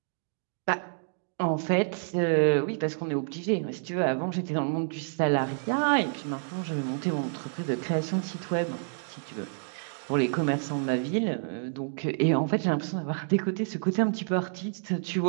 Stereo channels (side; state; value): left; silent; digital silence